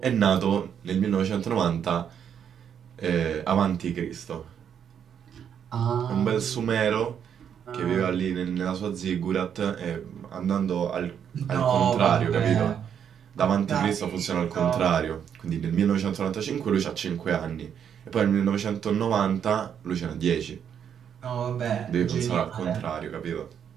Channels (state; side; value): quieter; left; 8.3 dB